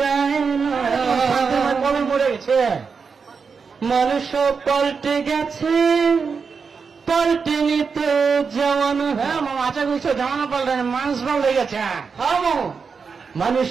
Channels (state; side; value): quieter; left; 5.4 dB